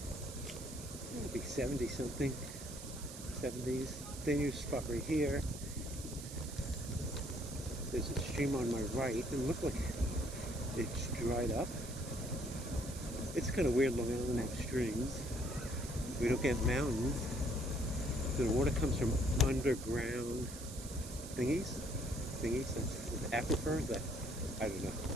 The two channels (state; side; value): noise; right; hiss, 12 dB below the sound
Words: it'll be 70 something. 70s. Dangerous spot right here. There's a stream on my right. It looks like it's dried up. It's kind of weird. Long Island have streams. We don't get mountains. So the water comes from underground thingies. That's aquifers. I don't know.